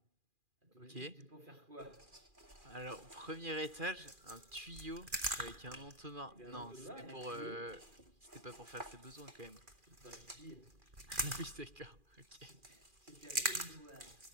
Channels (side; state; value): left; late; 2.4 ms